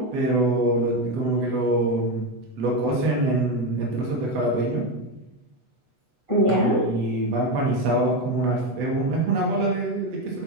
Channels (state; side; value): late; left; 8.1 ms